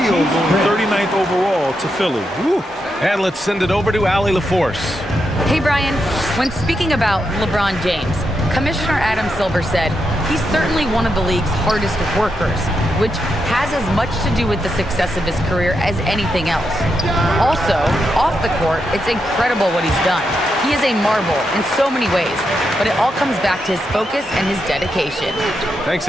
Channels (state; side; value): normal; both; correlation 0.84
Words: going 39th overall to Philly. Woo. And let's send it over to Allie LaForce. Hey, Brian, when speaking about LeBron James, Commissioner Adam Silver said he's certainly one of the league's hardest workers, which has as much to do with the success of his career as anything else. Also, off the court, it's incredible what he's done. He is a marvel in so many ways, but it all comes back to his focus and his dedication. Thanks,